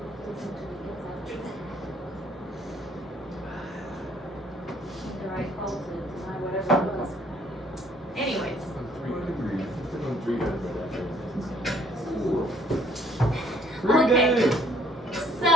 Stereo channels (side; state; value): both; normal; correlation 0.63